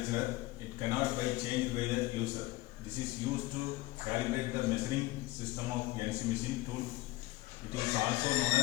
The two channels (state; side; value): quieter; right; 19.2 dB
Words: It cannot be changed by the user. This is used to calibrate the measuring system of CNC machine tool. It is also known